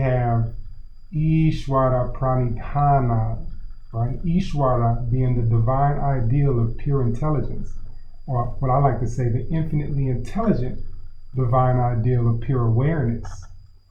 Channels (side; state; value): both; identical; correlation 1.00